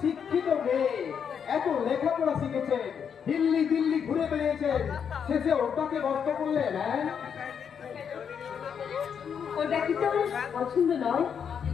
শিক্ষিত মেয়ে এত লেখাপড়া শিখেছেন, দিল্লি দিল্লি ঘুরে বেরিয়েছেন, শেষে ওটাকে নষ্ট করলেন। হ্যাঁ ওটা কি তোর পছন্দ নয়?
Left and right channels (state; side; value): quieter; right; 7.4 dB